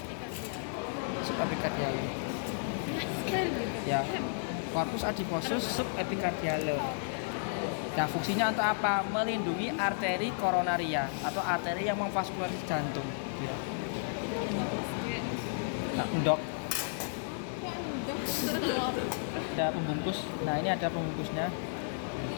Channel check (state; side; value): silent; right; digital silence